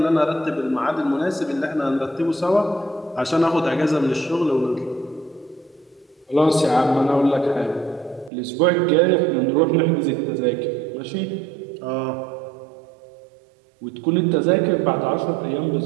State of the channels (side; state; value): left; drops out; at 8.3 s